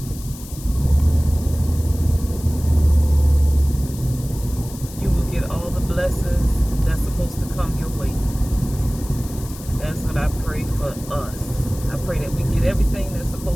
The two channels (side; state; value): left; noise; hiss, 16 dB below the sound